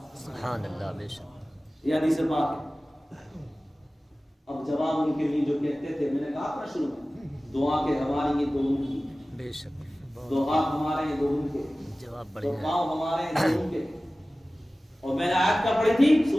سبحان اللہ. بے شک. یہ حدیث پاک ہے. اب جواب ان کے لیے جو کہتے تھے، میں نے کہا تھا شروع میں، دعا کے ہماری یہ دو ان کی، بے شک. دو ہاتھ ہمارے ہیں دو ان کے، جواب دو بڑھیا. پاؤں ہمارے ہیں دو ان کے. اور میں نے آیت کا پڑھی تھی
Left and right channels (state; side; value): normal; both; correlation 0.97